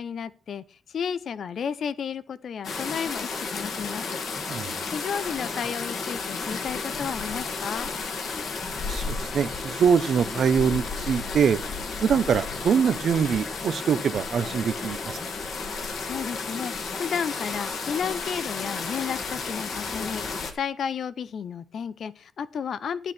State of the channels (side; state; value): both; normal; correlation 0.73